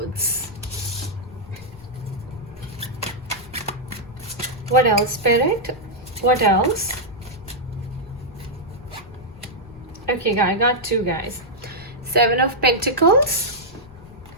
What else, Spirit? What else? Okay, I got two, guys. Seven of Pentacles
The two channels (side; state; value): left; noise; rumble, 20 dB below the sound